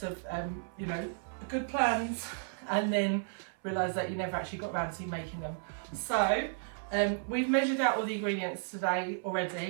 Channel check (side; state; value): left; silent; 55 dB below the other